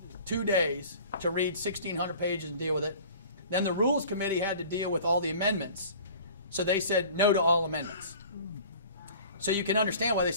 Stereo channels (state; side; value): inverted; both; correlation -0.45